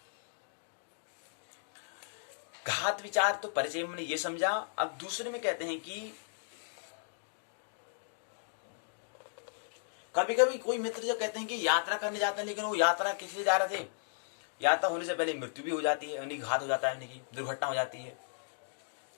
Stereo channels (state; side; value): silent; right; digital silence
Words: घात विचार तो परिचय में ये समझा। अब दूसरे में कहते हैं कि कभी कभी कोई मित्र जो कहते हैं कि यात्रा करने जाते हैं, लेकिन वो यात्रा किस लिए जा रहे थे, यात्रा होने से पहले मृत्यु भी हो जाती है, यानी घात हो जाता है, यानी कि दुर्घटना हो जाती है,